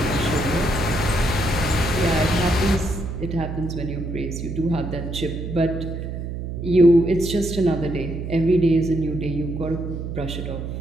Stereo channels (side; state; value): right; noise; hum, 6 dB below the sound